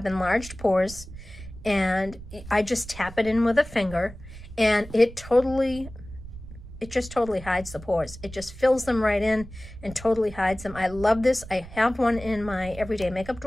enlarged pores, and I just tap it in with a finger, and it just totally hides the pores. It just fills them right in and totally hides them. I love this. I have one in my everyday makeup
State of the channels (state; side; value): noise; right; rumble, 15 dB below the sound